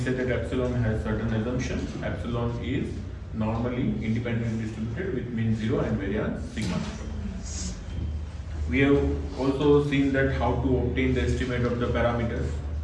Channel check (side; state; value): both; identical; correlation 1.00